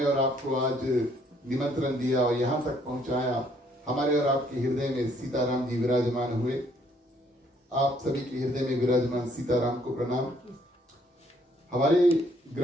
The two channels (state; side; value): normal; both; correlation 0.66